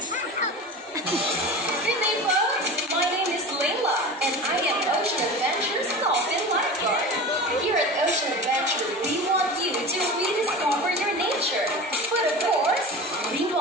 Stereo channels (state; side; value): normal; both; correlation 0.32